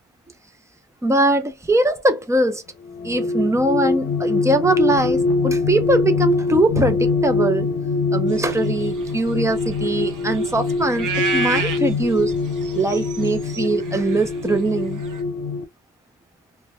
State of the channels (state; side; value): normal; both; correlation 0.58